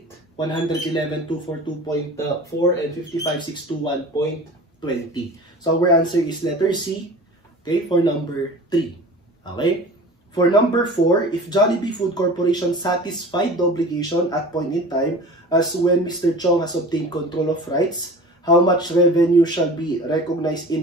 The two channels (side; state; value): both; normal; correlation 0.39